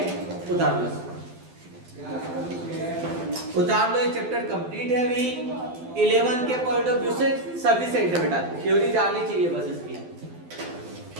उतार लो, उतार लो। ये चैप्टर कंप्लीट है अभी 11 के पॉइंट ऑफ व्यू से सफिशिएंट है बेटा, थ्योरी जाननी चाहिए बस इसकी,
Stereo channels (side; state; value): left; late; 12 ms